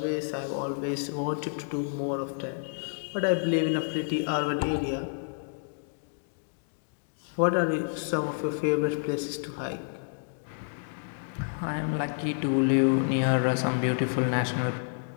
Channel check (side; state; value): right; silent; digital silence